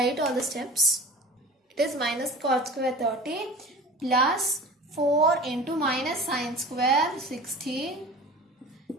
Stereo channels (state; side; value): normal; both; correlation 0.38